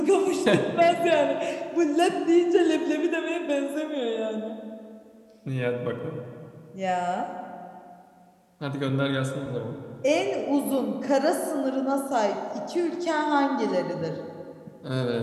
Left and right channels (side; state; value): both; identical; correlation 1.00